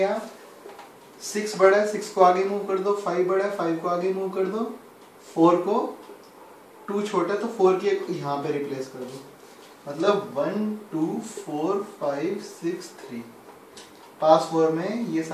6 बड़ा है, 6 को आगे मूव कर दो. 5 बड़ा है, 5 को आगे मूव कर दो. 4 को 2 छोटा है तो 4 की यहाँ पे रिप्लेस कर दो. मतलब 1 2 4 5 6 3. पास 4 में ये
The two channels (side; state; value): both; identical; correlation 1.00